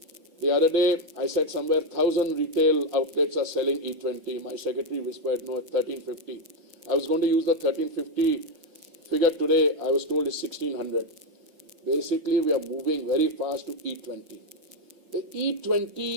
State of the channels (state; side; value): late; left; 5.3 ms